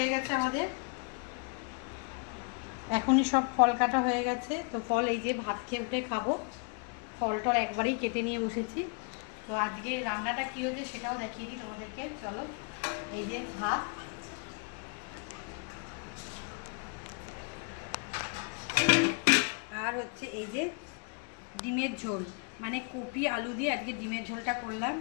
গেছে আমাদের, এখনই সব ফল কাটা হয়ে গেছে। তো ফল এই যে ভাত খেয়ে উঠে খাবো, ফল টল একবারেই কেটে নিয়ে বসেছি। তো আজকে রান্নাটা কী হয়েছে সেটাও দেখিয়ে দিই তোমাদেরকে, চলো। এই যে ভাত, আর হচ্ছে এই যে ডিমের ঝোল, মানে কপি আলু দিয়ে আজকে ডিমের ঝোলটা করলাম।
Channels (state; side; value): quieter; right; 36.7 dB